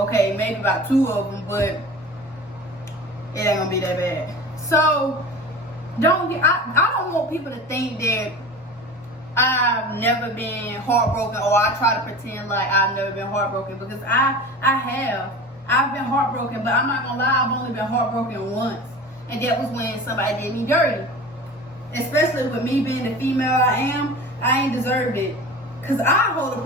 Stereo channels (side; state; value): both; normal; correlation 0.35